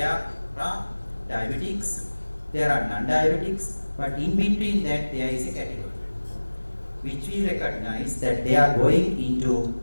are diabetics, there are non-diabetics, but in between that there is a category which we recognize that they are going into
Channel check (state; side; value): inverted; both; correlation -1.00